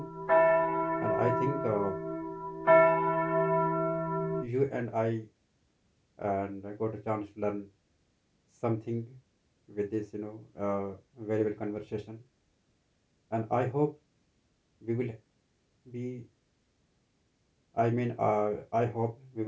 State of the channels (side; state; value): both; identical; correlation 1.00